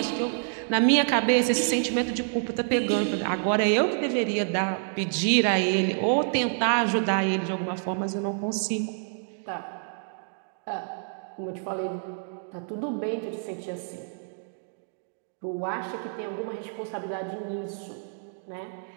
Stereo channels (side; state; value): left; silent; digital silence